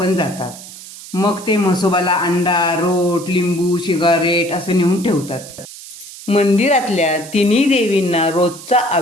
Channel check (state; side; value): noise; right; hiss, 15 dB below the sound